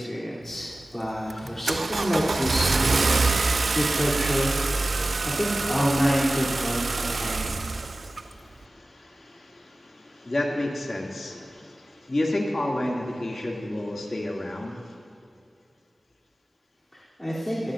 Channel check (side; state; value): both; normal; correlation 0.96